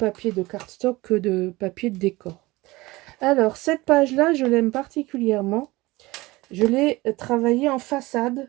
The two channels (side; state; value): left; quieter; 20.7 dB